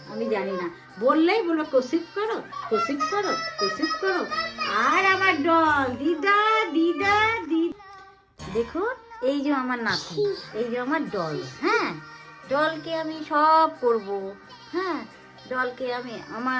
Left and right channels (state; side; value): identical; both; correlation 1.00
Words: আমি জানি না। বললেই বলো কসিপ করো, কসিপ করো, কসিপ করো। আর আমার ডল দিদা দিদা দিদা। দেখুন, এই যে আমার নাতি, এই যে আমার ডল। হ্যাঁ, ডলকে আমি সব করব। হ্যাঁ, ডলকে